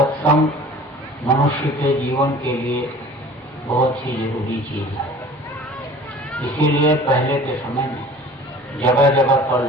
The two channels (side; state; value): both; normal; correlation 0.45